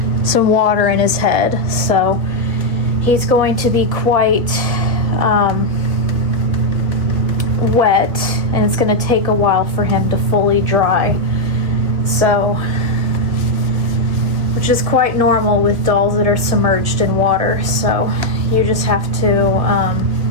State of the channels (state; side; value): late; left; 1.7 ms